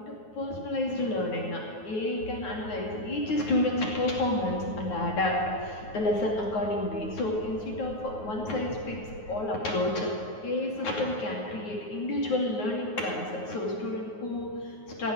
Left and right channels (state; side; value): late; right; 9.5 ms